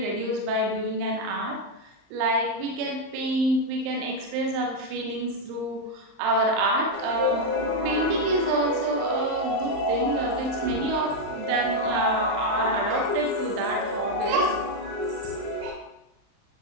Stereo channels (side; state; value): left; late; 39 ms